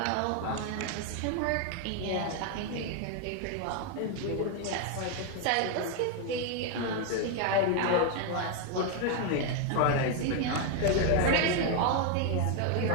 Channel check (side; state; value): both; different; correlation 0.01